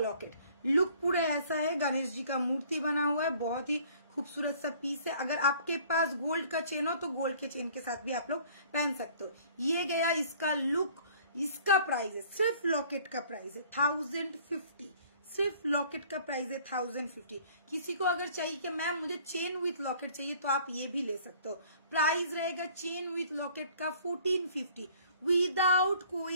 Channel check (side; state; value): both; inverted; correlation -0.55